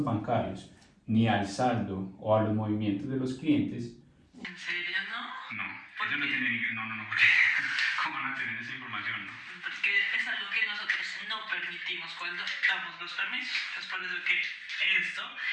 bancarios ni al saldo o a los movimientos de los clientes. ¿En serio no? No, ellos no tienen, porque ¿cómo van a tener esa información? Porque es algo que nosotros no permitimos cuando damos los permisos. Es por eso que esto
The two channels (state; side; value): identical; both; correlation 1.00